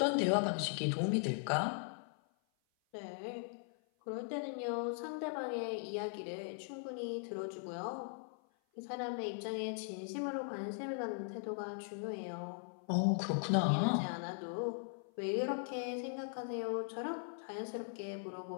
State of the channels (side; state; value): right; silent; 52 dB below the other